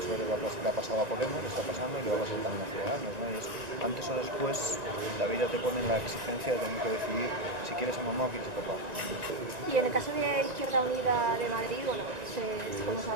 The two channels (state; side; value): late; left; 1.9 ms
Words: le ha pasado a Podemos, le está pasando y le va a pasar también a Ciudadanos, ¿no? Y es, antes o después la vida te pone en la exigencia de tener que decidir si quieres a mamá o quieres a papá. Y en el caso de Izquierda Unida de Madrid, bueno, como